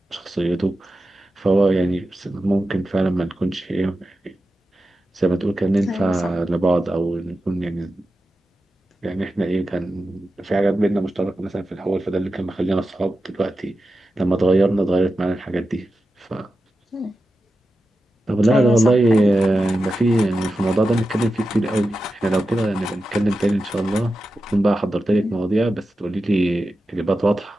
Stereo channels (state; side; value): normal; both; correlation 0.92